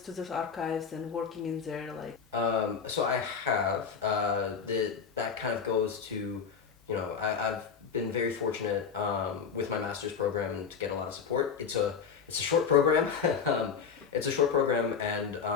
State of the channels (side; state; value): right; quieter; 6.5 dB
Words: those archives and working in there, So I have. That kind of goes to, I've been very fortunate with my master's program to get a lot of support. It's a short program. It's a short program, and